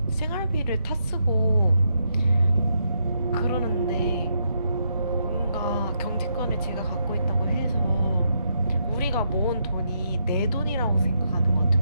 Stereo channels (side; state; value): both; inverted; correlation -0.79